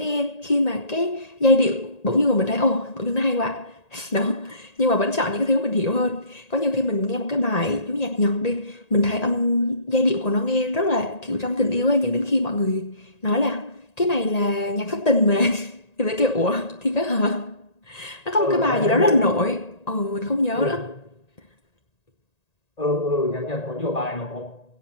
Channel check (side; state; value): right; late; 1.9 ms